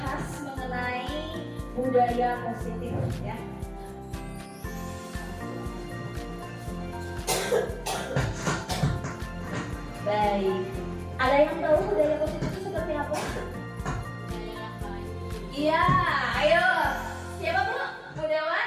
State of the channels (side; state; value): both; identical; correlation 1.00